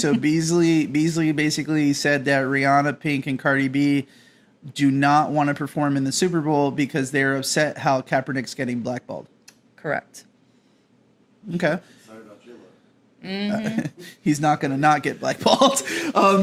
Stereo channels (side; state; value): both; identical; correlation 1.00